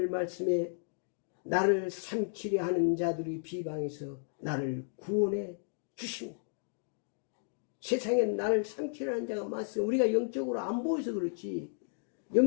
말씀에 나를 삼키려 하는 자들의 비방에서 나를 구원해 주십니다. 세상에 나를 삼키려 하는 자가 많습니다. 우리가 영적으로 안 보여서 그렇지,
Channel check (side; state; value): right; silent; digital silence